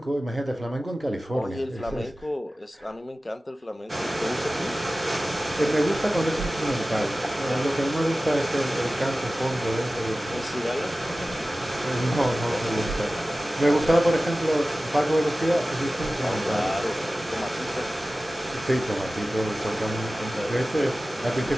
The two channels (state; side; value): normal; both; correlation 0.96